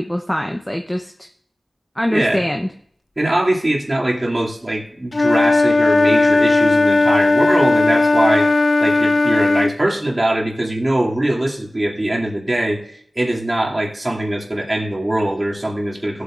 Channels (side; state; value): both; normal; correlation 0.97